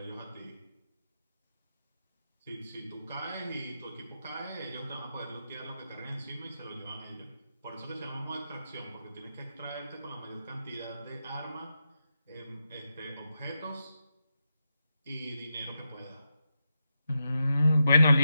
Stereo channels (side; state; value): both; inverted; correlation -0.86